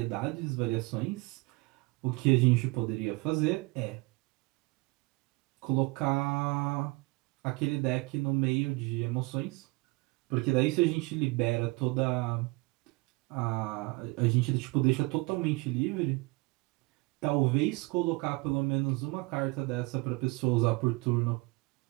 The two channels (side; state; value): left; quieter; 25.6 dB